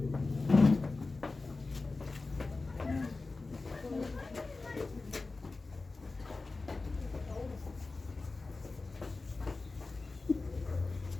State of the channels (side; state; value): right; quieter; 3.6 dB